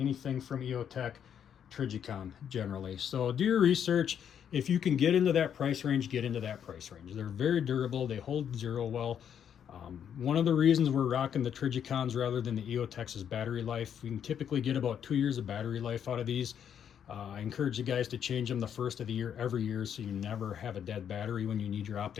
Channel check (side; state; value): right; quieter; 8.6 dB